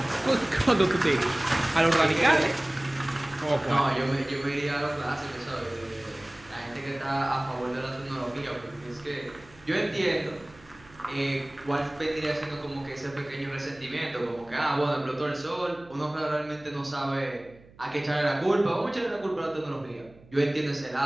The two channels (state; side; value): noise; right; hum, 25 dB below the sound